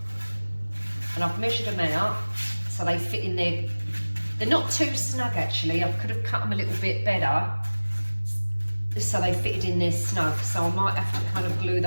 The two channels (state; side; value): inverted; both; correlation -1.00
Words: and I've measured them out so they fit in there. They're not too snug actually. I could have cut them a little bit better so they fitted in there snug. So I might have to kind of glue